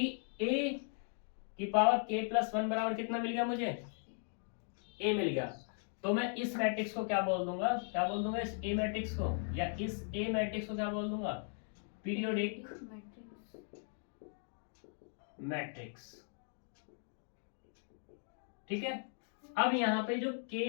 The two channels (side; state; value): right; silent; 52 dB below the other